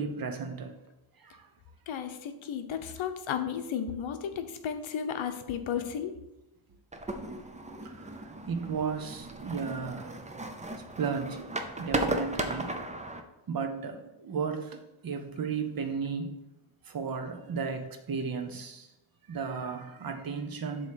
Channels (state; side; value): normal; both; correlation -0.06